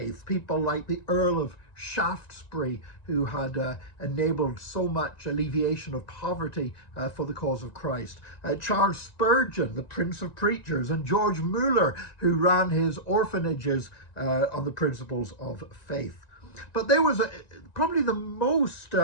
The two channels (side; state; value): right; late; 1.9 ms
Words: people like the Earl of Shaftesbury, who had enabled so much alleviation of poverty for the cause of Christ, Charles Spurgeon, the Prince of Preachers, and George Muller, who ran his orphanages on the principles of faith. But there was probably the most